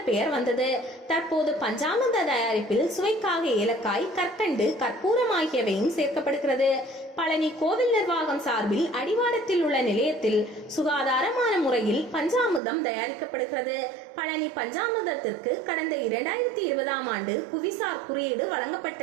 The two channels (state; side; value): drops out; left; at 12.6 s